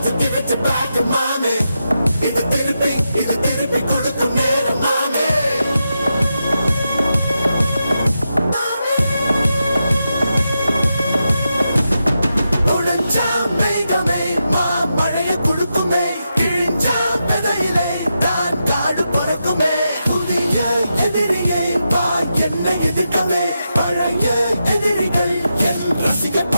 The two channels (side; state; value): both; inverted; correlation -0.87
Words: to give it to back, mommy. இது திருப்பி கொடுக்கும் நேரம், mommy. உடைஞ்சா மேகமே மழைய குடுக்குமே, கிழிஞ்சா விதையிலே தான் காடு பொறுக்குமே. புதிய எதிரியை வா என்னை எதிர்க்கவே, பழைய